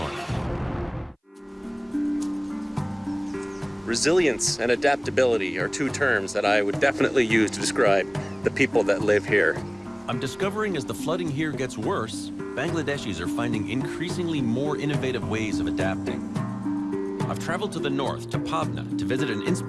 Resilience and adaptability are two terms that I would definitely use to describe the people that live here. I'm discovering as the flooding here gets worse, Bangladeshis are finding increasingly more innovative ways of adapting. I've traveled to the north, to Pabna, to visit an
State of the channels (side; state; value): both; identical; correlation 1.00